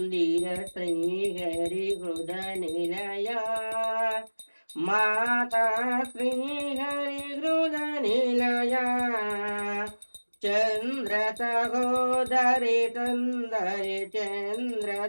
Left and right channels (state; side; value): inverted; both; correlation -1.00